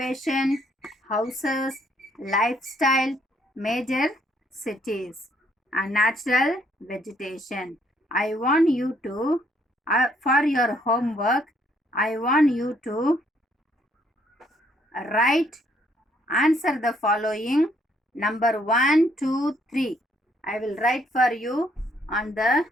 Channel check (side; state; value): both; normal; correlation 0.68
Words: houses, lifestyle, major cities, and natural vegetation. I want you to, for your homework, I want you to write, answer the following number 1, 2, 3. I will write for you on the